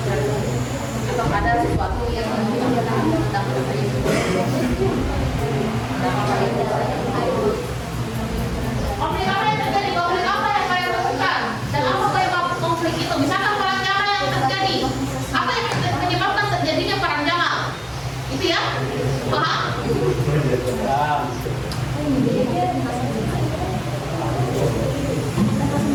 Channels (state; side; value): identical; both; correlation 1.00